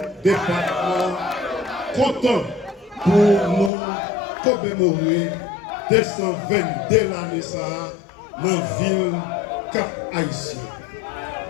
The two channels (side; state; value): right; drops out; at 3.7 s